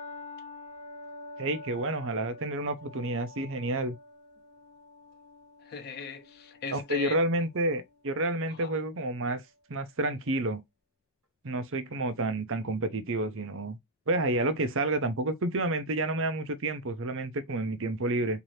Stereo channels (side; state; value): both; normal; correlation -0.05